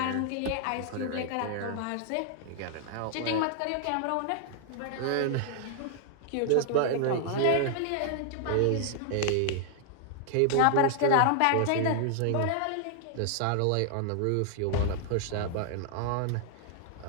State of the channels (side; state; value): both; different; correlation 0.00